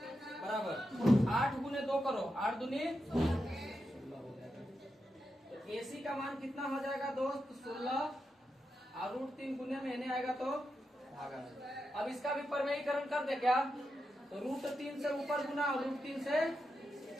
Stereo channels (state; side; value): normal; both; correlation 0.87